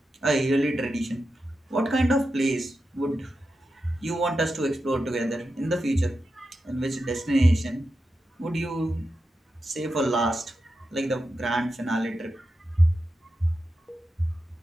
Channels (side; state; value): both; normal; correlation 0.89